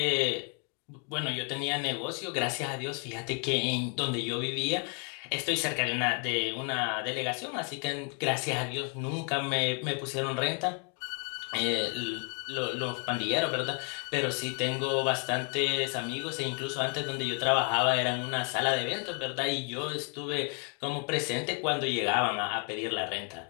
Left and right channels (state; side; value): quieter; right; 38.9 dB